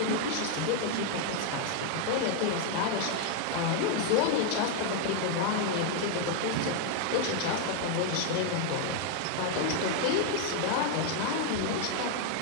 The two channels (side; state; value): both; different; correlation 0.01